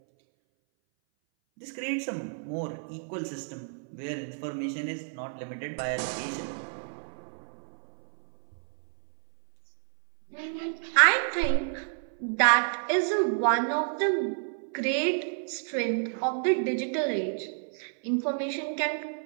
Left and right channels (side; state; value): left; silent; 58 dB below the other